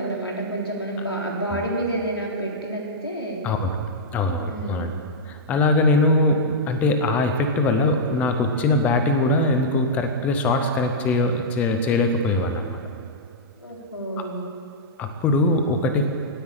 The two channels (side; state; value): both; normal; correlation -0.10